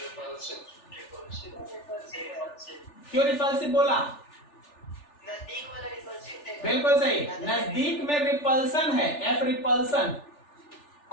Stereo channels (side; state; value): right; late; 3.4 ms